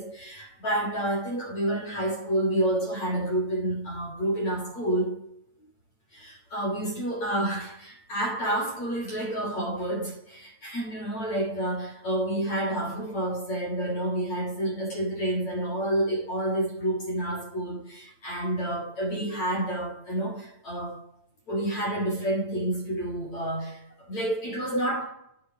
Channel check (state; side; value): late; right; 8.8 ms